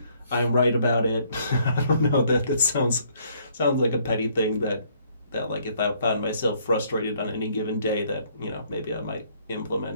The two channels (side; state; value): both; inverted; correlation -0.65